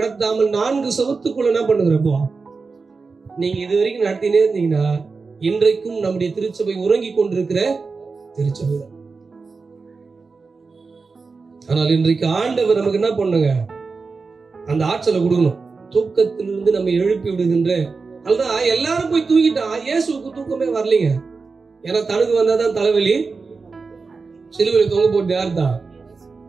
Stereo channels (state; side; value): quieter; left; 4.4 dB